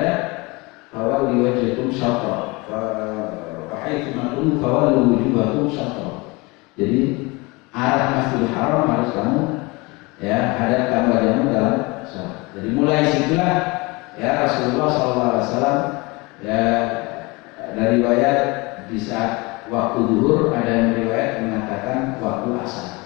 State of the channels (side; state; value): right; quieter; 25.3 dB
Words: fawalli wajhakum syatral. Wahai bima kuntum, fawalli wujuhakum syatral. Jadi arah Masjidil Haram harus kamu ya hadapkan wajahmu dalam sholat. Jadi mulai situlah ya Rasulullah SAW ya dari riwayat di saat waktu zuhur, ada yang riwayat mengatakan waktu